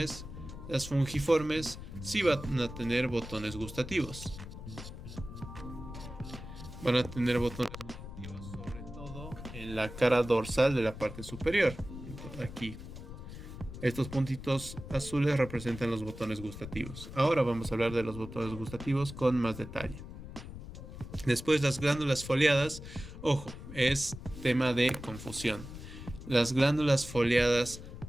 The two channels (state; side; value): noise; left; rumble, 12 dB below the sound